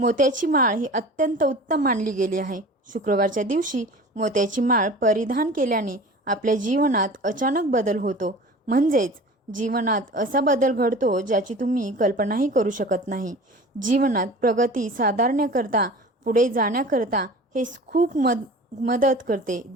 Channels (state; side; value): normal; both; correlation 0.40